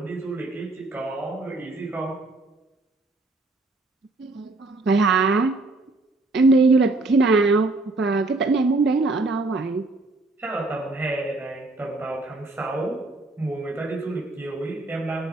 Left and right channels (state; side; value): quieter; left; 3.1 dB